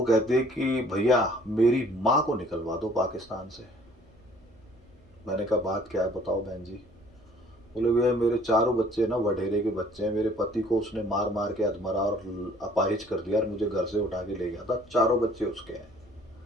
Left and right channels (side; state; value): both; normal; correlation 0.56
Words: कहते कि भैया मेरी माँ को निकलवा दो पाकिस्तान से। मैंने कहा बात क्या है बताओ बहन जी। बोले भैया मेरे चारों बच्चे ना वडेरे के बच्चे हैं, मेरे पति को उसने मार मार के अधमरा और अपाहिज कर दिया और मुझे घर से उठा के ले गया था, चारों बच्चे उसके हैं